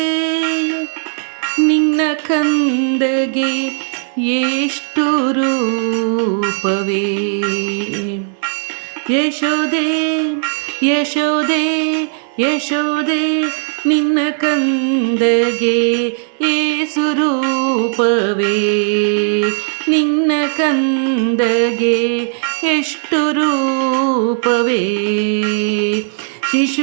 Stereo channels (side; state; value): left; silent; digital silence